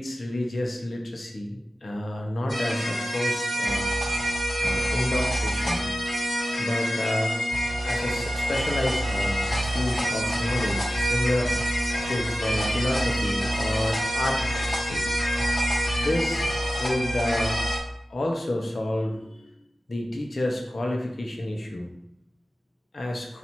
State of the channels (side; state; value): both; normal; correlation 0.94